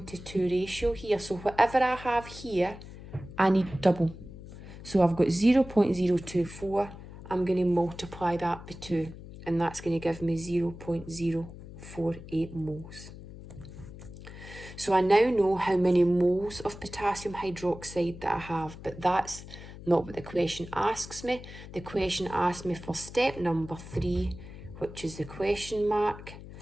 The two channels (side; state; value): left; noise; hum, 14 dB below the sound